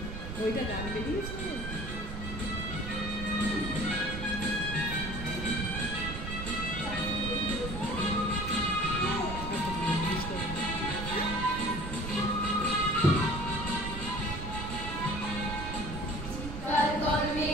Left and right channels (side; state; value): right; noise; rumble, 7 dB below the sound